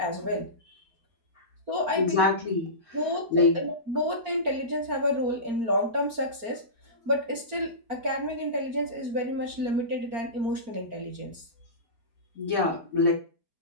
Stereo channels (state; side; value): late; left; 4.4 ms